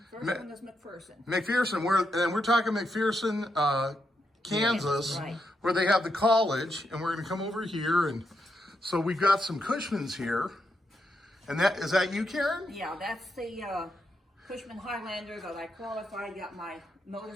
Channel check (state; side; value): normal; both; correlation 0.82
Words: First one was McPherson. McPherson, we're talking McPherson, Kansas, right. Where they have the college, and we're going to come over here, and so we've got some Cushmans here. And is that you, Karen? Yeah, that's the Cushman Highlander that I qualified, got my